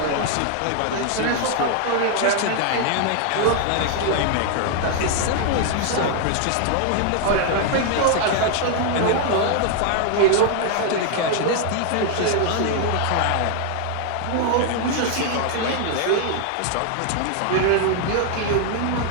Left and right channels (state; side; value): different; both; correlation 0.00